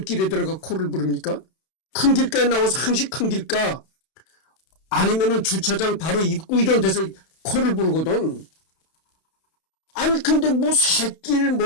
들어가 코를 부릅니까? 큰 길가에 나와서 항시 큰 길가 아니면은 주차장 바로 입구 이런 데서 코를 부르거든. 아니 근데 뭐 새길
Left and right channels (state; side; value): late; right; 31 ms